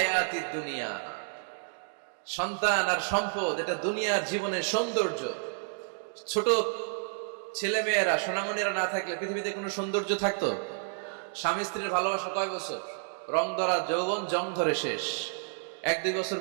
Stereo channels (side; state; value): left; silent; digital silence